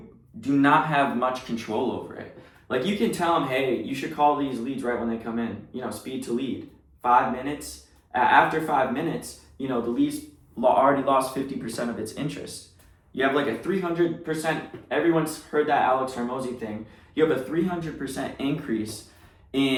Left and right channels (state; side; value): identical; both; correlation 1.00